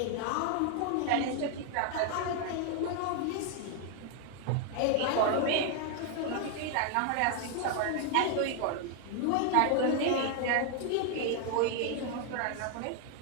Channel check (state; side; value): different; both; correlation 0.00